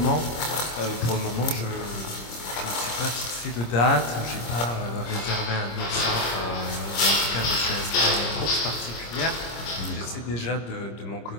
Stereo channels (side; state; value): right; late; 26 ms